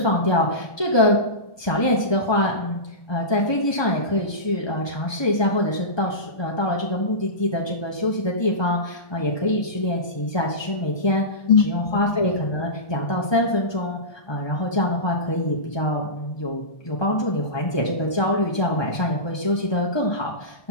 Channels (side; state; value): right; late; 1.2 ms